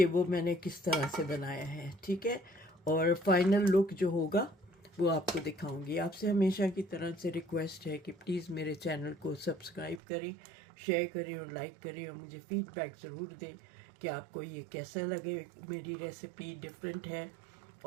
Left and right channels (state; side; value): drops out; left; at 10.0 s